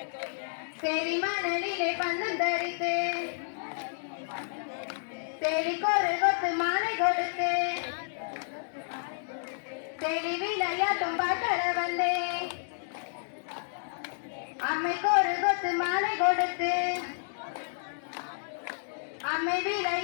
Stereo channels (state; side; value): silent; right; digital silence